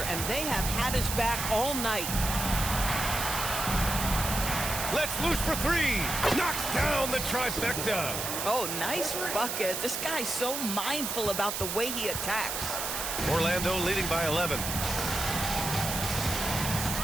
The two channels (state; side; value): noise; right; hiss, 3 dB below the sound